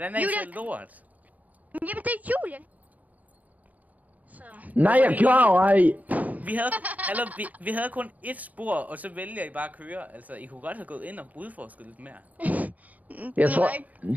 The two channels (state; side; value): late; left; 0.074 ms